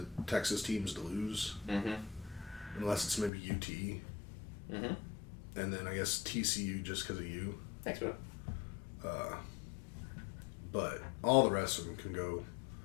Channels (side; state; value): right; drops out; at 3.3 s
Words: Texas teams to lose. Mm-hmm. Unless it's maybe UT. Mm-hmm. And then I guess TCU just because of you. Thanks, bro. But all the rest of them can go